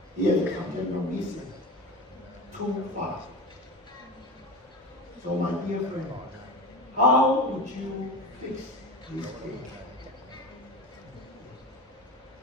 he has congenital missing 2-5. So my dear friend, how would you fix this case?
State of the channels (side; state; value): both; normal; correlation 0.28